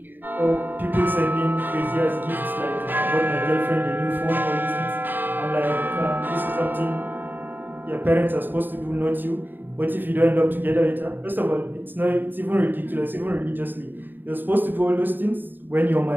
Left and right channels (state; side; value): late; left; 0.092 ms